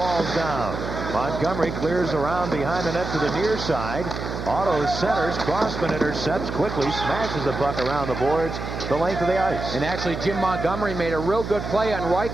down. Montgomery clears around behind the net to the near side. Otto centers. Crossman intercepts quickly. Smashes the puck around the boards the length of the ice. And actually, Jim Montgomery made a real good play on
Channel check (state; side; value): noise; right; hum, 6 dB below the sound